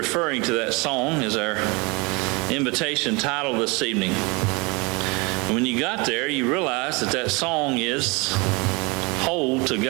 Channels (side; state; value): left; quieter; 27.4 dB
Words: to that song as our invitation title this evening. And when you got there, you realize that that song is Hold to